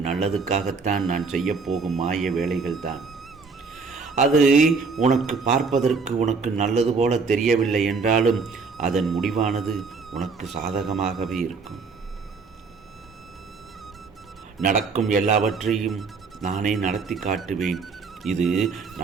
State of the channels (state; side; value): quieter; left; 4.7 dB